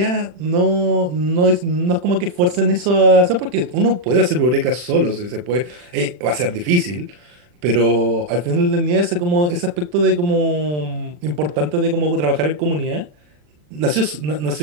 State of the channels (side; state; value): left; late; 40 ms